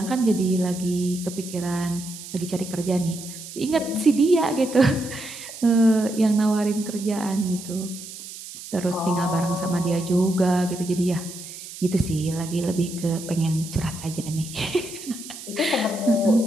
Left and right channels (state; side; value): noise; right; hiss, 13 dB below the sound